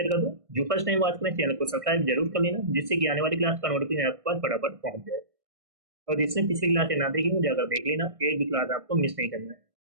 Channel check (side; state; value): left; late; 1.6 ms